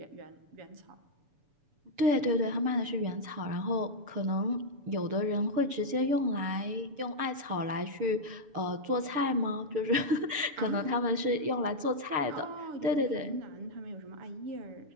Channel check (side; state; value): left; late; 6.9 ms